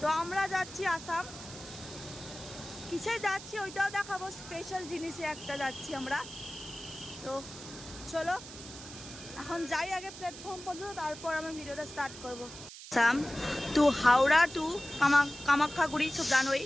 তো আমরা যাচ্ছি আসাম। কিসে যাচ্ছি ওইটাও দেখাবো, স্পেশাল জিনিসে একটা যাচ্ছি আমরা। তো চলো এখন যাই আগে প্ল্যাটফর্ম পর্যন্ত, তারপর আমি ভিডিওটা স্টার্ট করবো। আসাম টু হাওড়া টু কামাখ্যাগুড়ি, সব জানোই।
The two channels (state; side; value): noise; right; hiss, 14 dB below the sound